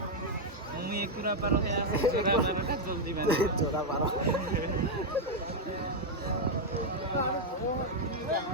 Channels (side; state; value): both; normal; correlation 0.00